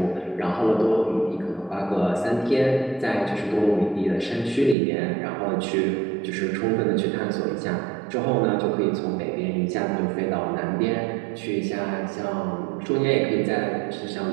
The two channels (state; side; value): drops out; left; at 4.8 s